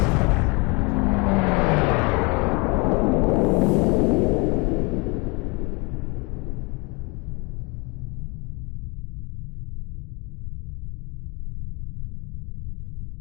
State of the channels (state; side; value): quieter; right; 28.9 dB